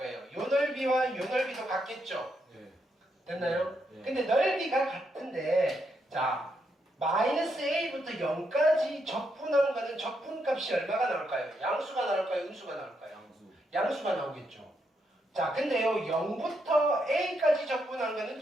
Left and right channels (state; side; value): normal; both; correlation 0.79